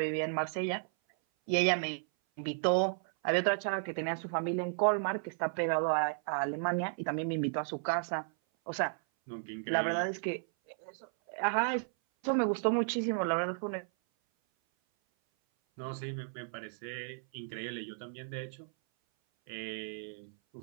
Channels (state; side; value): silent; left; 55 dB below the other